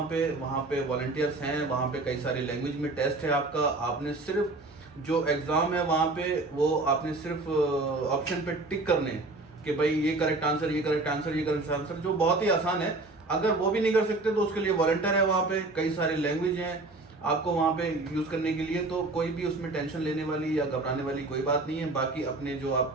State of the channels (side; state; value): left; quieter; 3.2 dB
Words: पे वॉलंटियर्स हैं, वहाँ पे कई सारी लैंग्वेज में टेस्ट है आपका। आपने सिर्फ जो एग्जाम है वहाँ पे वो आपने सिर्फ ऑप्शन पे टिक करने कि भाई ये करेक्ट आंसर, ये करेक्ट आंसर, ये करेक्ट आंसर, जो बहुत ही आसान है। अगर वो भी नहीं कर सकते तो उसके लिए वॉलंटियर है वहाँ पे, कई सारी लैंग्वेज हैं, आपको वहाँ पे यूज करने के लिए, तो कोई भी उसमें टेंशन लेने वाली या घबराने वाली कोई बात नहीं है। बाकी अपने जो